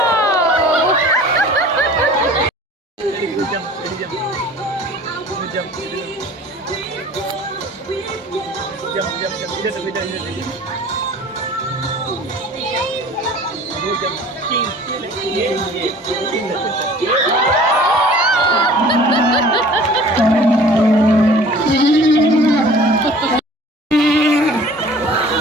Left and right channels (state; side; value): normal; both; correlation 0.47